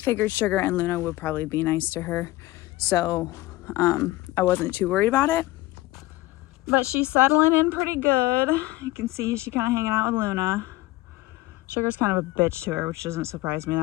Sugar and Luna would probably be nice to her, so I wasn't too worried about it. But she's settling in pretty good. You can see she kind of hanging out with Luna. Sugar's kind of a bitch to her, which doesn't surprise me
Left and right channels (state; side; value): quieter; right; 18.5 dB